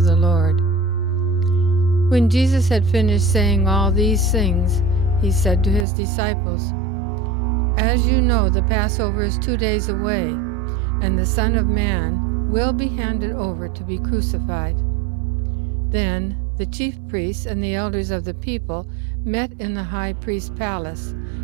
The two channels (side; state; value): left; drops out; at 5.9 s